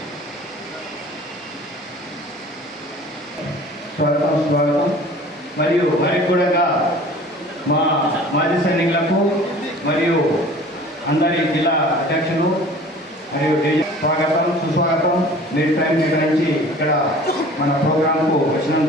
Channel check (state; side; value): normal; both; correlation 0.45